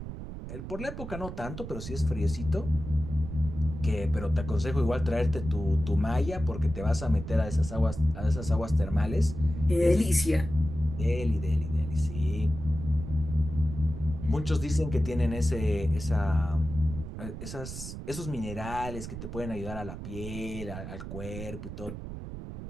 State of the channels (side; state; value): right; noise; rumble, 9 dB below the sound